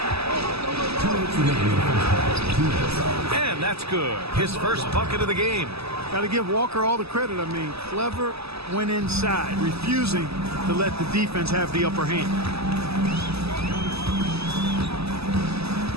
And that's good. His first bucket of the game. Got to give Walker all the credit. I mean, clever, went inside, refusing to let the defense have the upper hand.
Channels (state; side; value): late; left; 0.78 ms